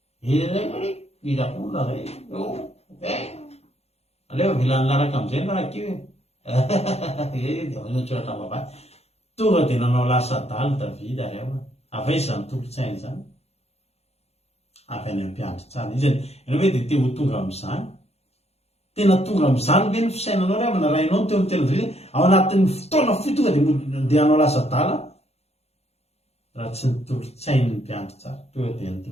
idakola zay aleo vilany laraka am'izay narakio tsoratra vavay tonga dia nanao lasa daly davida ary ao afa izy zany tolotsainy zany avy any ampiandry tsara izy ianao hoe dia te ho tonga am'izany tena tonga am'izany ve ny fisainanao ry amana rainao teo amin'ny tena davida ao anatin'ny fotoana fi tonga dia hanao lasa dala raha tsy nitolotsainy ny mpiandry tsara tonga dia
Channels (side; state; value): right; late; 0.30 ms